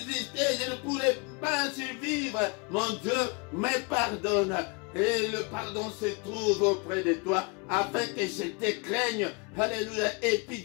je ne pourrais pas survivre. Mon Dieu, me pardonne. Et le pardon se trouve auprès de toi afin que je te craigne. Alléluia. Et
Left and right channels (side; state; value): right; quieter; 30.6 dB